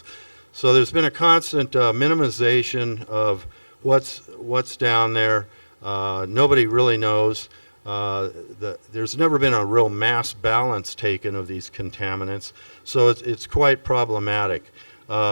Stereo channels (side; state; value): both; inverted; correlation -1.00